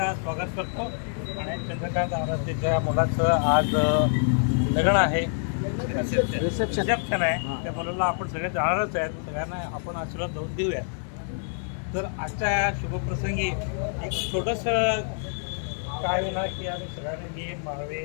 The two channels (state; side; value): silent; right; digital silence